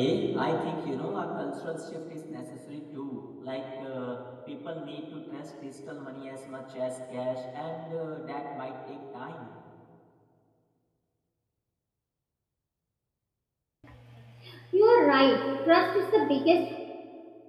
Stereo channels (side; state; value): both; identical; correlation 1.00